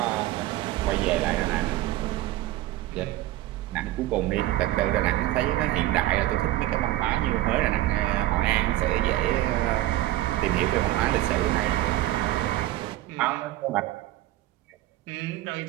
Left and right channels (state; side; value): quieter; left; 15.6 dB